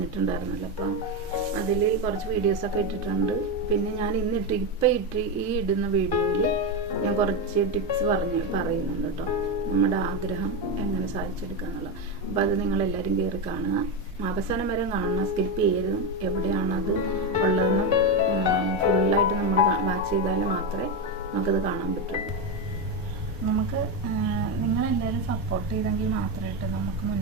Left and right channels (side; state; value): both; normal; correlation 0.11